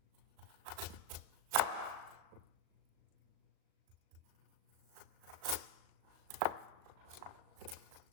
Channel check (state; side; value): late; left; 37 ms